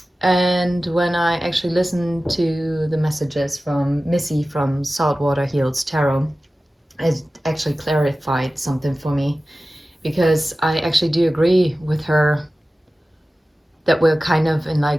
And when I actually listened to the messages from Missy from Saltwater Heals Tarot, it actually clarified something for me, because I actually do agree with her that we're kind of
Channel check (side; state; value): both; normal; correlation 0.96